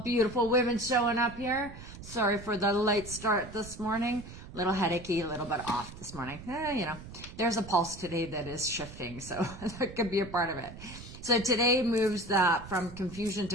beautiful women showing up here. Sorry for the late start this morning. A little headachy, a little bit off this morning. There's a pulse today that is shifting, so that could be a part of it. So today moves from confusion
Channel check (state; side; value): noise; right; rumble, 14 dB below the sound